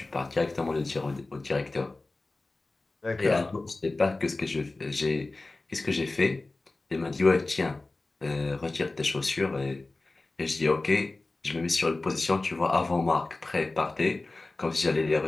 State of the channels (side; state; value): right; quieter; 3.2 dB